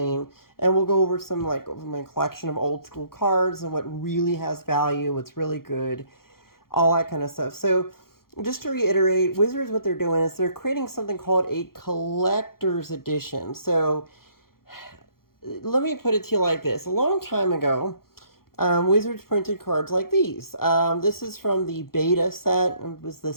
and we'll go over some, like, over my collection of old school cards and what really has value, what's really good, all that kind of stuff. So just to reiterate, Wizards, what they're doing is they're creating something called a collector's edition. So let me put it to you like this. A long time ago, Wizards printed cards like these. This is from the beta set. It was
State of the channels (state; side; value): late; right; 0.93 ms